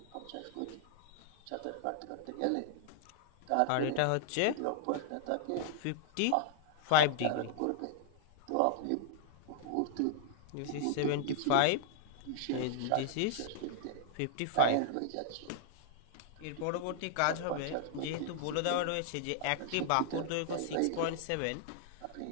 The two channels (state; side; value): different; both; correlation -0.01